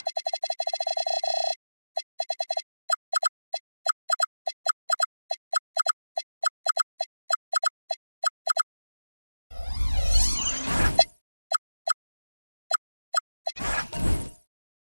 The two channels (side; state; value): both; inverted; correlation -1.00